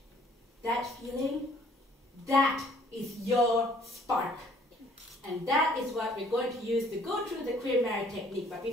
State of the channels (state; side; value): normal; both; correlation 0.59